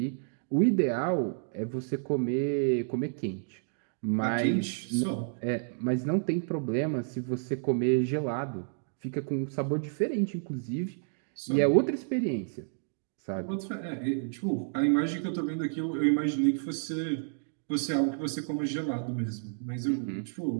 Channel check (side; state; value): left; silent; digital silence